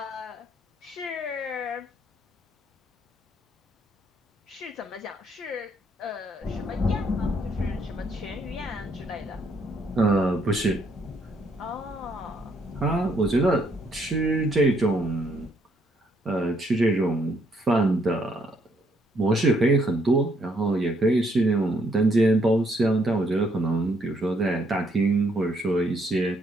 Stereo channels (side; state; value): both; normal; correlation 0.71